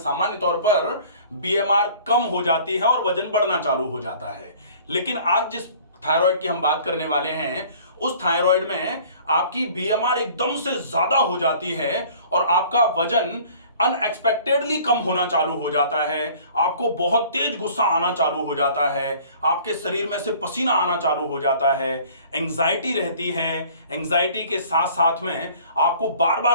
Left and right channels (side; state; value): both; inverted; correlation -0.50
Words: तौर पर बीएमआर कम हो जाती है और वजन बढ़ना चालू हो जाता है। लेकिन आज जिस थायराइड की हम बात करने वाले हैं, उस थायराइड में आपकी बीएमआर एकदम से ज्यादा हो जाती है और आपका वजन अनएक्सपेक्टेडली कम होना चालू हो जाता है। आपको बहुत तेज गुस्सा आना चालू हो जाता है, आपके शरीर में से पसीना आना चालू हो जाता है, एंजाइटी रहती है। एंजाइटी के साथ साथ में आपको बार